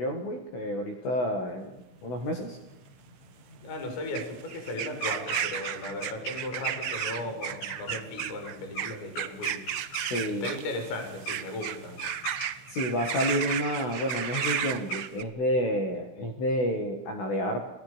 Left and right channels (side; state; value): right; late; 15 ms